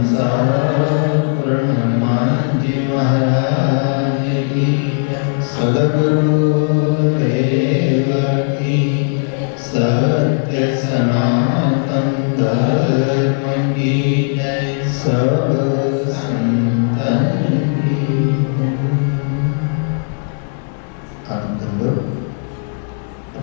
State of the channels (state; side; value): silent; right; 57 dB below the other